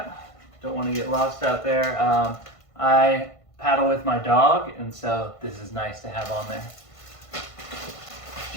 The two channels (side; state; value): right; late; 1.5 ms